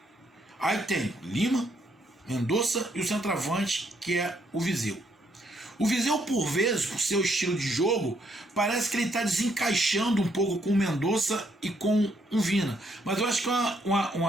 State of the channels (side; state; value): both; normal; correlation 0.72